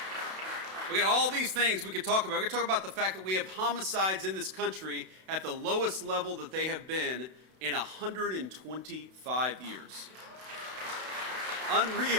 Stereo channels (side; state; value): left; late; 32 ms